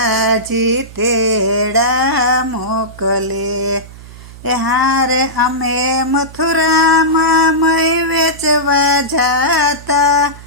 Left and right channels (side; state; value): right; noise; hum, 17 dB below the sound